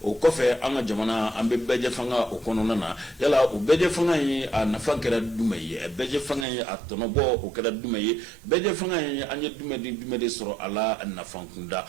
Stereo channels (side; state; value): left; drops out; at 6.5 s